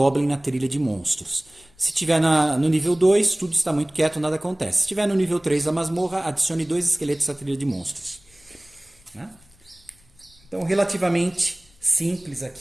na trilha de monstros. Se estiver no nível 2, tudo está muito quieto, nada acontece. Se estiver no nível 3 da masmorra, adicione 2 esqueletos à trilha de monstros. Né? Então, relativamente simples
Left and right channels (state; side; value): noise; left; rumble, 30 dB below the sound